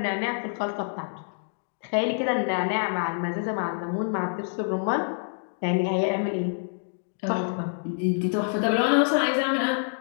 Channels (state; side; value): silent; right; digital silence